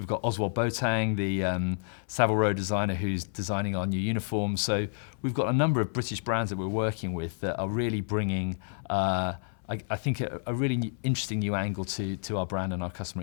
got Oswald Boateng, the Savile Row designer, who's designing our new uniforms. So we've got a number of British brands that we're working with that are really bringing, I think, a really interesting new angle to our brand and our customer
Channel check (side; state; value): right; silent; 58 dB below the other